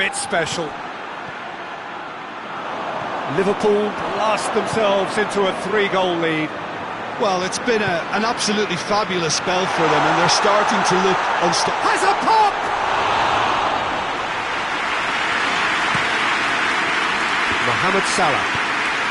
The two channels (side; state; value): both; identical; correlation 1.00